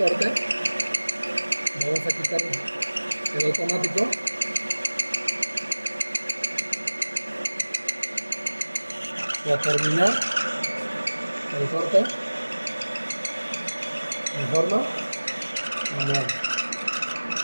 Vamos a quitar el automático. Y a terminar el corte en forma manual.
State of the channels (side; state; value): both; inverted; correlation -1.00